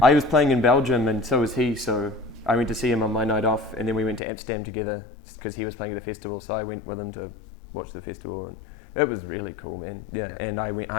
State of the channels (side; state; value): right; drops out; at 4.2 s